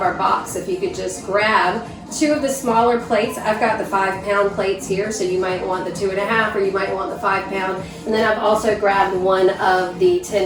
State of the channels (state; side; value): identical; both; correlation 1.00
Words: our box. If you could just grab two of the smaller plates. I've got the 5-pound plates here, so you might want the 2.5 or you might want the 5-pound. And then I've also grabbed one of the